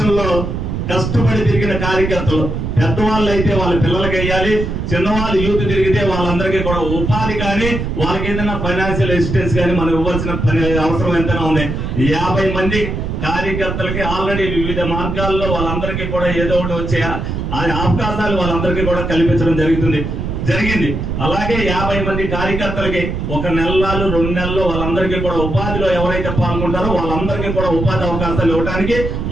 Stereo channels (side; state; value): right; noise; rumble, 3 dB below the sound